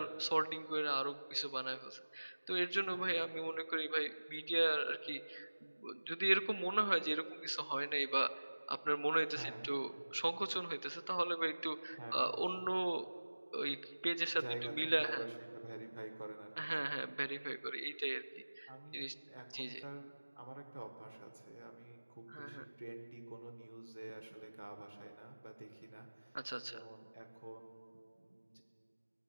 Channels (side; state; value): both; inverted; correlation -1.00